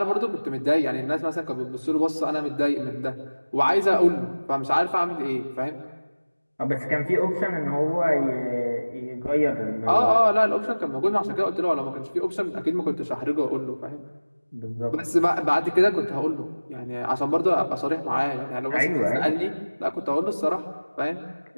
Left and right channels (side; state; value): both; inverted; correlation -1.00